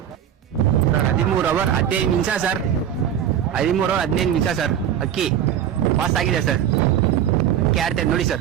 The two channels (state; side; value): quieter; left; 9.8 dB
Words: ಸರ್ 13 ಅವರ್ 15 ನಿಮಿಷ ಸರ್. 13 ಅವರ್ 15 ನಿಮಿಷ ಸರ್. ಅಕ್ಕಿ ಪಾಸ್ ಆಗಿದೆ ಸರ್. ಅಕ್ಕಿ ಆಡ್ತಾರೆ ನೋಡಿ